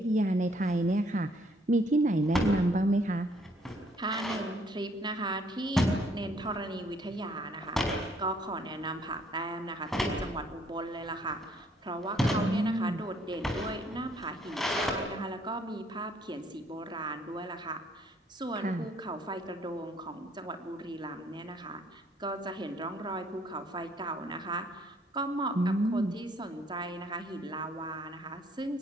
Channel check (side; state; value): both; normal; correlation 0.65